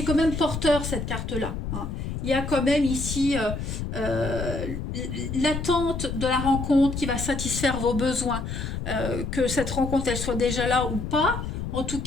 quand même porteur cette carte-là. Hein. Il y a quand même ici euh, l'attente de la rencontre qui va satisfaire vos besoins. Que cette rencontre elle soit déjà là ou pas. En tout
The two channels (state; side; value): noise; left; rumble, 5 dB below the sound